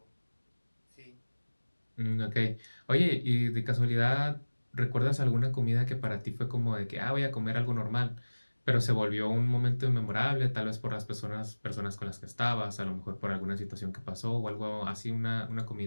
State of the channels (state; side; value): inverted; both; correlation -1.00